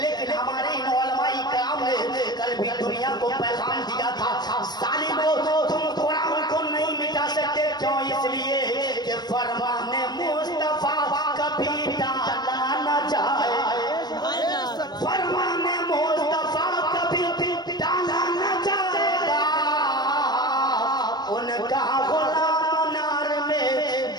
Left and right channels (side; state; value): right; late; 0.20 ms